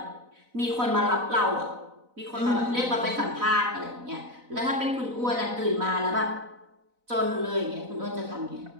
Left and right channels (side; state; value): left; late; 4.0 ms